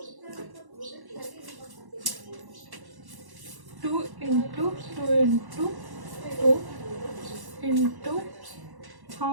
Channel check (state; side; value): late; left; 1.1 ms